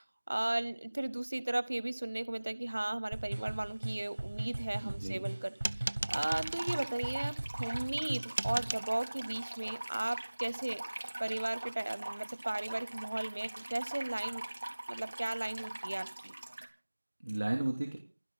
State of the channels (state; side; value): inverted; both; correlation -1.00